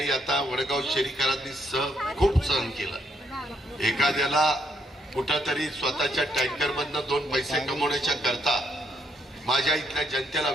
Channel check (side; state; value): both; normal; correlation 0.74